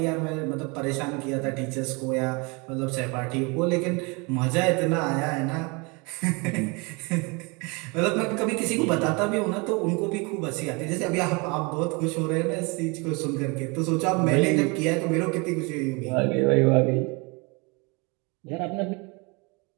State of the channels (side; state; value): left; quieter; 29.0 dB